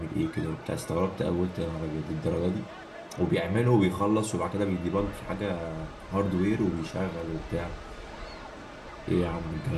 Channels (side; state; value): both; identical; correlation 1.00